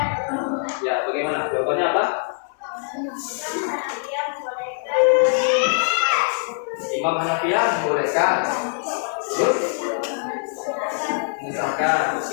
Ya, bagaimana? Jawabannya apa? Imam Hanafiyah membolehkan. Terus mengesahkan.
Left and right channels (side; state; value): right; silent; digital silence